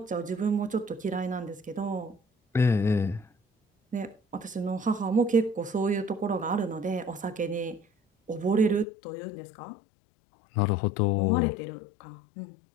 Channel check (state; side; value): drops out; right; at 8.8 s